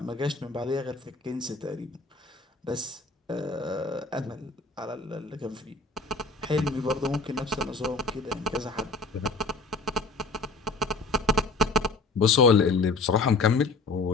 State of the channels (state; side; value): quieter; right; 3.6 dB